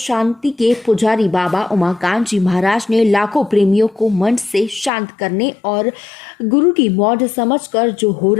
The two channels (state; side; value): drops out; right; at 4.9 s